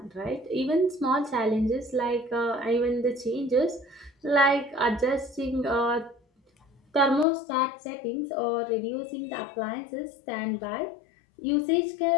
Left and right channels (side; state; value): right; drops out; at 7.2 s